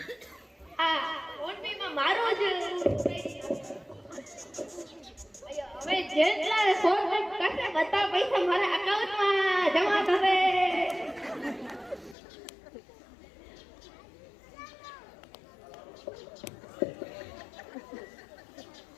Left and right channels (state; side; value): drops out; right; at 12.2 s